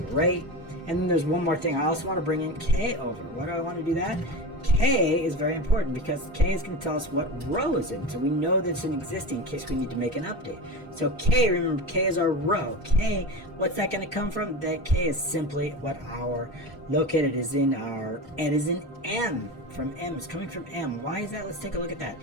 rate. And then there's one more thing. I also want to bring in K over. Why do I want to do that? K is very important because K is going to tell us what row is in. So we know that it's an existing in case we need to make an update. So K, remember, K is our row. K, what's that going to come from? That K is simply what our located is in our, it is in M. From M, it's coming from M. Why is that? Let's take a look at that.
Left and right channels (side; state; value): both; normal; correlation 0.25